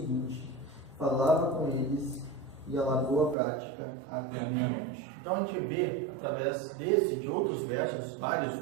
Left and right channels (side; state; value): left; drops out; at 3.4 s